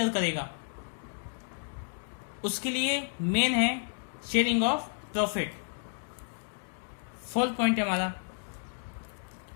करेगा। उसके लिए मेन है sharing of profit. Fourth point है हमारा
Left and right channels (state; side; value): silent; right; digital silence